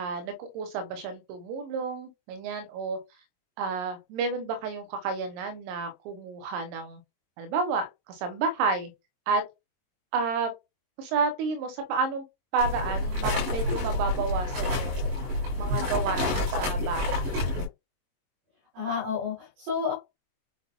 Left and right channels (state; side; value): late; left; 22 ms